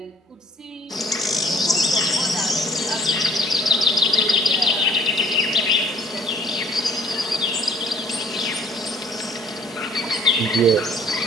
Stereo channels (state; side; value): normal; both; correlation 0.56